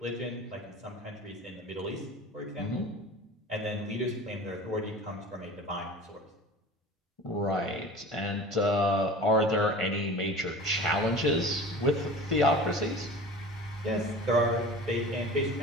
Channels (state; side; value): normal; both; correlation 0.39